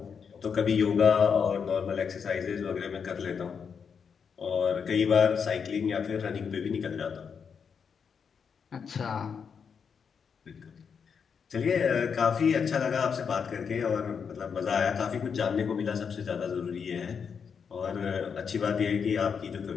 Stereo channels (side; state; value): right; quieter; 6.5 dB